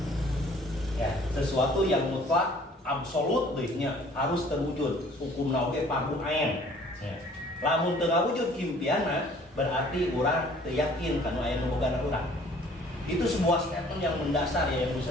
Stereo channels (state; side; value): normal; both; correlation 0.54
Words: ya, sesuatu yang mutlak absolut harus terwujud hukum nauke parhum ain ya. Lamun tengah wujud impiana berarti orang yakin karena aya nu boga urang. Itu sebuah statement yang mendasar ya yang